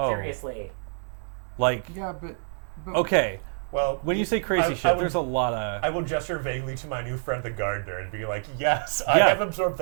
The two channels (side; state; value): left; silent; digital silence